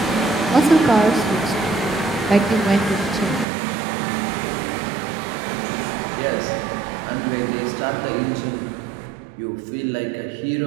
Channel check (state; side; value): drops out; left; at 3.5 s